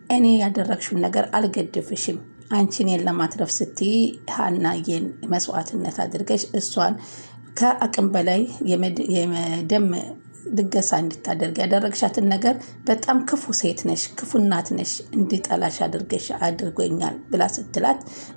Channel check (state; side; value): inverted; both; correlation -1.00